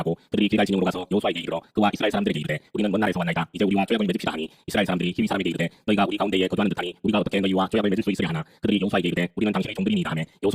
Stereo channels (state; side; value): identical; both; correlation 1.00